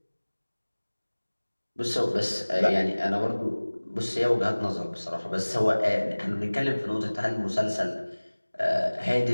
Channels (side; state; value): both; inverted; correlation -1.00